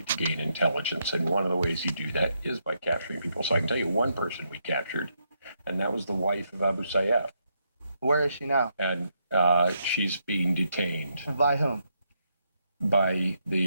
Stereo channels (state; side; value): inverted; both; correlation -0.79